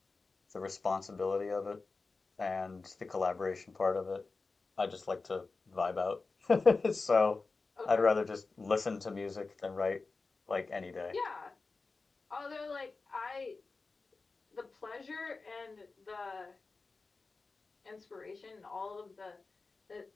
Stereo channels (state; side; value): quieter; right; 4.0 dB